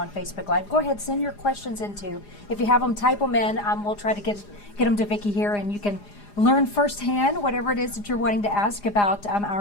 on Facebook Live, go ahead, send your questions into. If you have them, type them in. We'll try to get them to Vicki here, and you can learn firsthand whatever it is that you're wanting to ask about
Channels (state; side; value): late; right; 4.9 ms